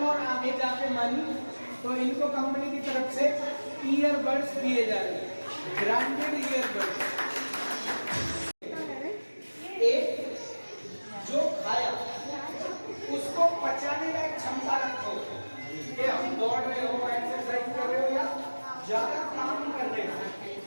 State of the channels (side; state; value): both; inverted; correlation -1.00